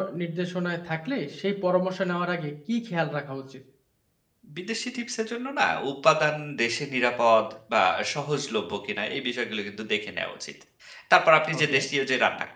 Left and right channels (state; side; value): identical; both; correlation 1.00